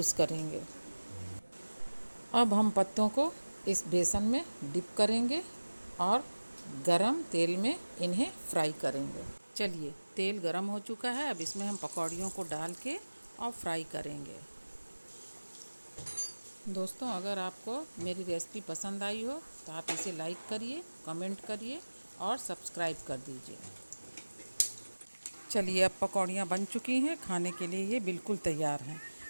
करेंगे। अब हम पत्तों को इस बेसन में डिप करेंगे और गरम तेल में इन्हें फ्राई करेंगे। चलिए, तेल गरम हो चुका है, अब इसमें हम पकौड़ियों को डाल के और फ्राई करेंगे। दोस्तों, अगर आपको मेरी रेसिपी पसंद आई हो तो आप इसे लाइक करिए, कमेंट करिए और सब्सक्राइब कर दीजिए। चलिए, अब पकौड़ियाँ बन चुकी हैं, खाने के लिए ये बिल्कुल तैयार हैं।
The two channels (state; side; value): inverted; both; correlation -1.00